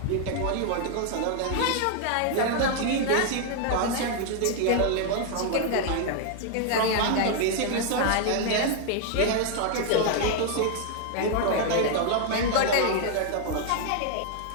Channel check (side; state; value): both; different; correlation 0.00